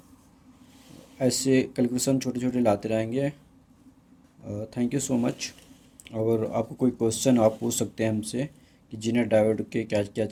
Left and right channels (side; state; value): both; identical; correlation 1.00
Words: ऐसे कैलकुलेशन छोटे छोटे लाते रहेंगे। Thank you so much. और आपको कोई क्वेश्चन आप पूछ सकते हैं हमसे कि जीनर डायोड के क्या क्या